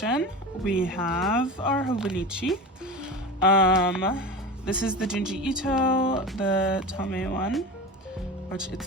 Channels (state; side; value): normal; both; correlation 0.29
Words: we have our Hobonichi. This is the Junji Ito, the Tome one, which